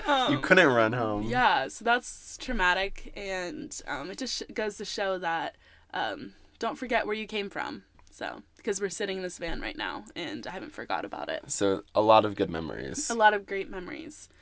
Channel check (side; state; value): both; identical; correlation 1.00